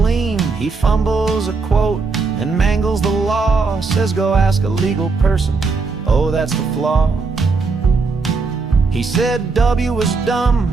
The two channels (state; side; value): quieter; left; 4.3 dB